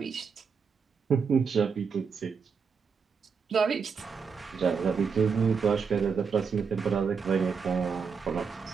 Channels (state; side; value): quieter; left; 5.8 dB